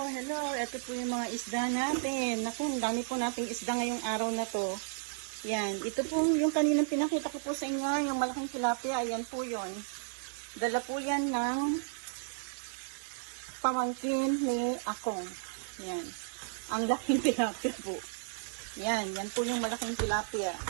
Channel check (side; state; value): left; silent; digital silence